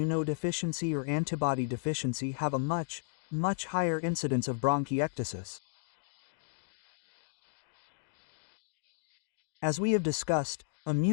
or antibody deficiency have a much higher incidence of bronchiectasis. As we have discussed,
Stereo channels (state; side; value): silent; right; digital silence